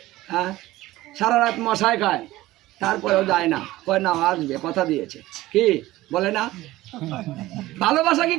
হ্যাঁ, সারা রাত মশাই খায়, তারপরেও যায় না, কয় না আসবে, কথা দিয়েছে, কি বলে না? ভালোবাসা কি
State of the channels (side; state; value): left; quieter; 17.1 dB